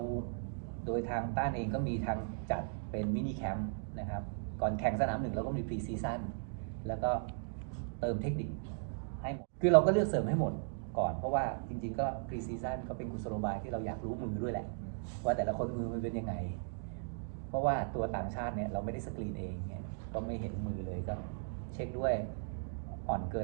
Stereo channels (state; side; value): silent; left; digital silence